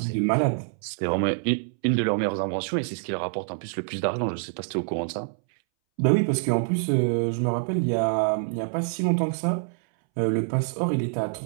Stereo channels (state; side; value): silent; left; 61 dB below the other